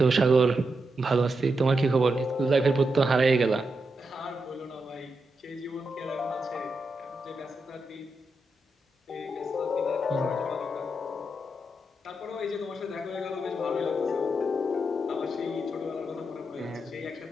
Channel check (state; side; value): normal; both; correlation 0.85